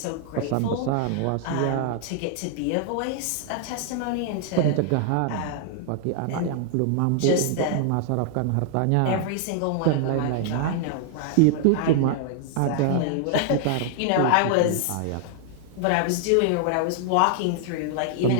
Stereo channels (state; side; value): different; both; correlation 0.00